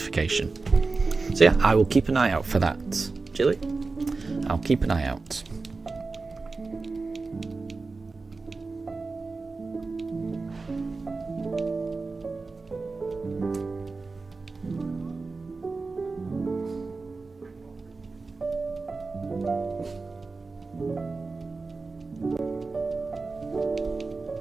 So yeah, I will keep an eye out for that. Jilly, I'll keep an eye out.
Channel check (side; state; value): left; quieter; 3.9 dB